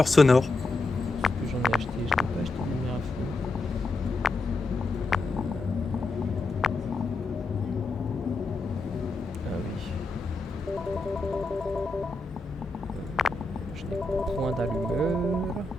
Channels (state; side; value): quieter; right; 3.2 dB